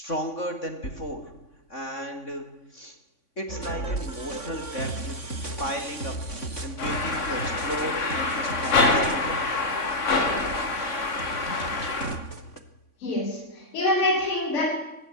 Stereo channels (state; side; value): late; right; 3.5 ms